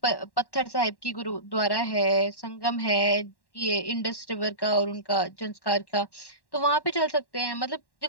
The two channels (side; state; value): right; late; 1.1 ms